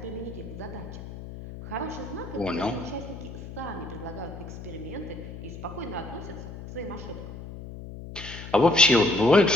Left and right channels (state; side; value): noise; left; hum, 11 dB below the sound